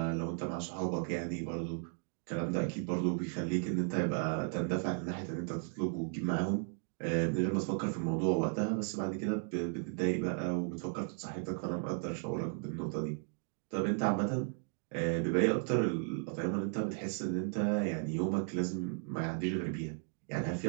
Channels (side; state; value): left; silent; 54 dB below the other